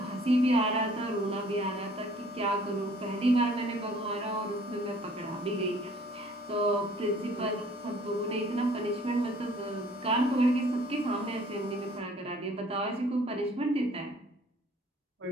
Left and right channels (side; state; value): both; normal; correlation 0.55